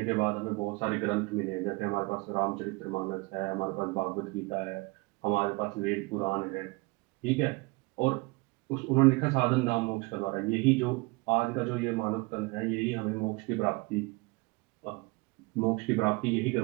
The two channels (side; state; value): left; quieter; 25.6 dB